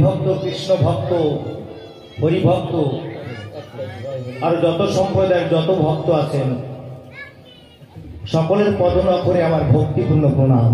ভক্ত, কৃষ্ণ ভক্ত, হরি ভক্ত আর যত সম্প্রদায়ের যত ভক্ত আছেন, সকলের পদনখরে আমার ভক্তিপূর্ণ প্রণাম।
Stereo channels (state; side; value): identical; both; correlation 1.00